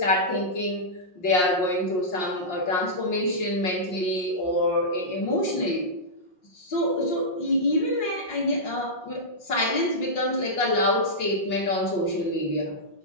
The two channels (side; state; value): right; late; 5.6 ms